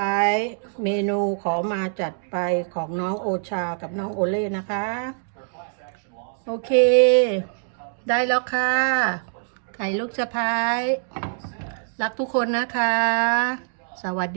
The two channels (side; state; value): left; silent; digital silence